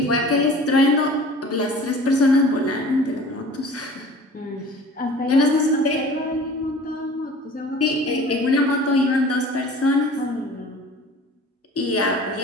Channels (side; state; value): both; normal; correlation 0.44